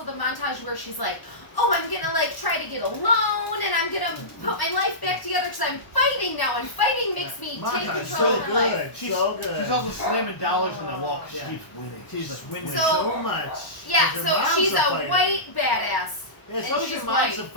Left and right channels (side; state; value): right; late; 1.0 ms